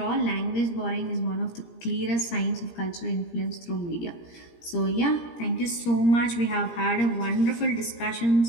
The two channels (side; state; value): right; late; 17 ms